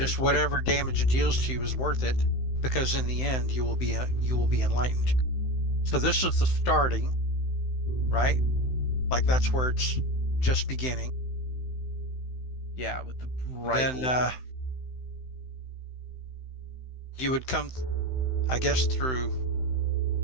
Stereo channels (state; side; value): late; right; 16 ms